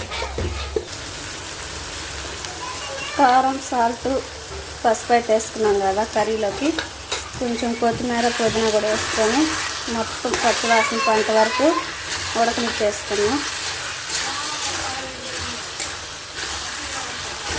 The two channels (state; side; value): identical; both; correlation 1.00